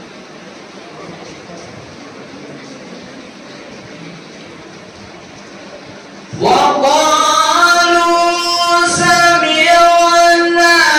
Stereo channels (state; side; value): identical; both; correlation 1.00